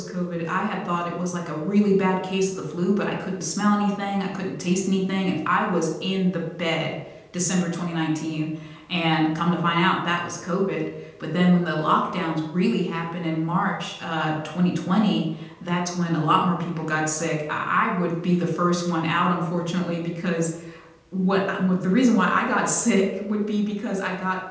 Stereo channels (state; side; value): identical; both; correlation 1.00